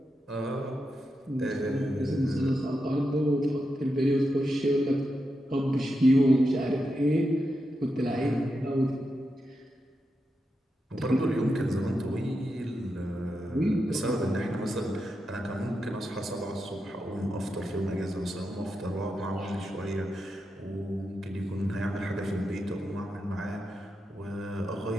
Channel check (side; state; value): both; normal; correlation 0.87